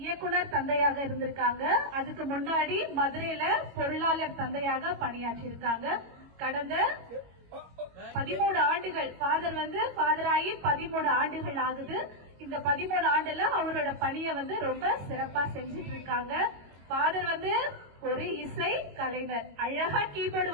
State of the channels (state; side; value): late; left; 21 ms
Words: இயக்குனர் தந்தையாக இருந்திருக்காங்க. அதுக்கு முன்னாடி மதுரையில பொருளாளர் தந்தையாக பணியாற்றி இருக்காங்க. கடந்த 13 ஆண்டுகள் ஃபாதர் வந்து ஃபாதர் ஆகி 13 ஆண்டுகள் ஆகுது. இந்த 13 ஆண்டுல அவரோட பணியை வந்து ரொம்ப சிறப்பா செஞ்சிட்டு இருக்காங்க. ஃபாதர் வந்து ஒரு இசை கலைஞர், அழகா கீபோர்டு